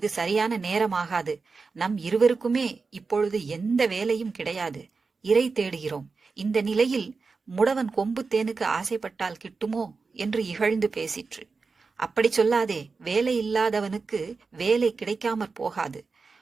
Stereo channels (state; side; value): quieter; left; 4.5 dB